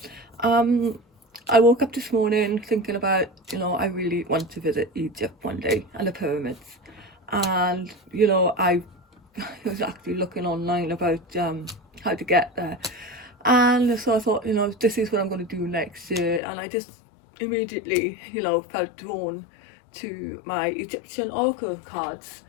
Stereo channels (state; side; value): drops out; right; at 16.4 s